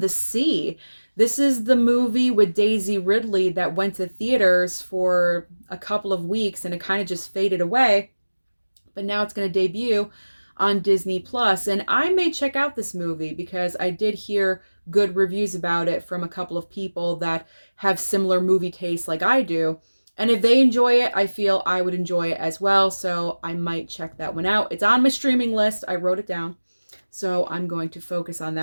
the Sea. This is the movie with Daisy Ridley that went to theaters for a couple of weeks and it kind of just faded away. But now it's going to debut on Disney Plus, and I may check out this movie because I did hear good reviews about it from a couple of people that have similar movie tastes like I do. And if they enjoy it, I feel I would enjoy it as well, so I might check that one out. It's on my streaming list. I wrote it down, so I'm going to focus on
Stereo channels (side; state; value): both; inverted; correlation -1.00